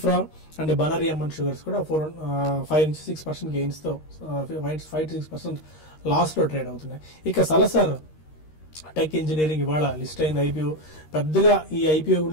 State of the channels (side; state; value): right; late; 13 ms